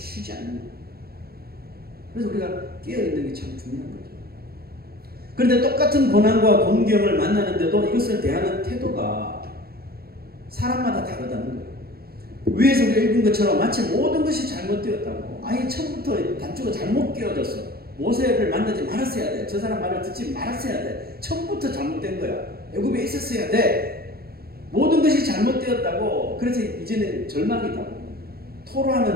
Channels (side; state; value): left; late; 0.45 ms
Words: 않는 거예요. 그래서 우리가 깨어있는 게 참 중요한 거죠. 그런데 똑같은 고난과 공경을 만나는데도 이것을 대하는 태도가 사람마다 다르다는 거예요. 위에서 우리가 읽은 것처럼 마치 모든 것이 잘못되었다고. 아예 처음부터 단추가 잘못 끼워졌어. 모세를 만나지 말았어야 돼. 저 사람 말을 듣지 말았어야 돼. 처음부터 잘못된 거야. 애굽에 있었어야 돼. 모든 것이 잘못되었다고. 그래서 이제는 절망이다.